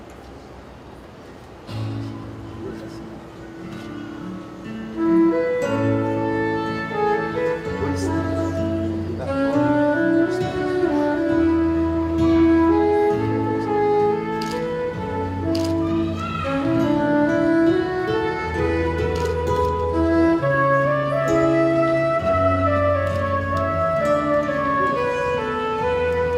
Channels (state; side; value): identical; both; correlation 1.00